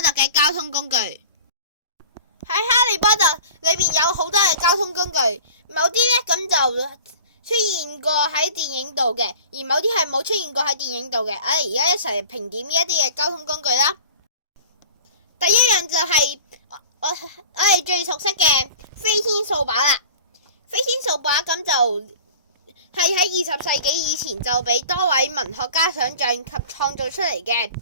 特嘅交通工具。喺哈利波特裏邊有好多嘅交通工具，某啲呢咁就出現過喺電影度嘅，而某啲係冇出現過喺電影度嘅。我哋而家一齊評點呢一啲嘅交通工具啦。第一樣就係我哋最熟悉嘅飛天掃把啦。飛天掃把咁就係喺20世紀以前就俾多位文學家想象及創造出嚟嘅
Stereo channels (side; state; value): both; inverted; correlation -0.41